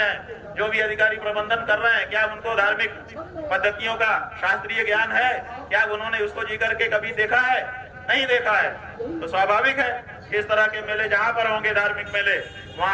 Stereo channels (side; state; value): both; identical; correlation 1.00